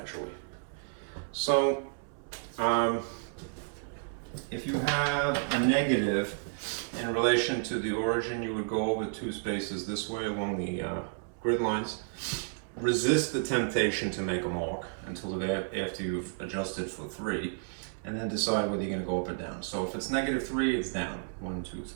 So, if you have a negative in relation to the origin, you would go over 2 spaces this way along the grid lines. Resist the temptation to make a mark until after you've adjusted for 3, and then decide whether you're going to go up or down. So if it's -3, it's down. 1, 2,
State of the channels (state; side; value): silent; left; 57 dB below the other